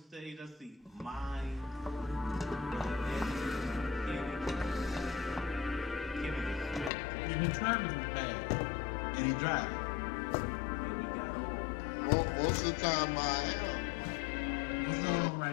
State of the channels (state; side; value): drops out; right; at 6.9 s